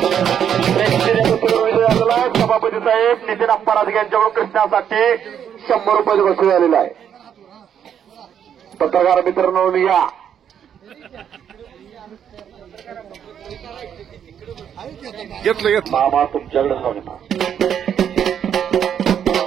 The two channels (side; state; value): left; quieter; 8.8 dB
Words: सभापती साहेब नितीन अप्पा राजगे यांच्याकडून कृष्णासाठी 100 रुपये वसूल झालेला आहे. पत्रकार मित्रांनो या घेतलं मामा तुमच्याकडे सांगता.